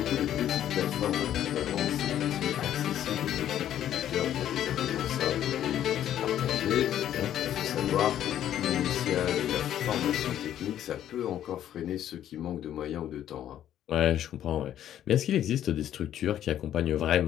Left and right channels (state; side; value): quieter; right; 11.2 dB